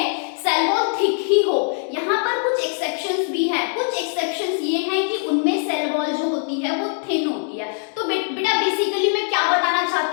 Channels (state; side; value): silent; right; 57 dB below the other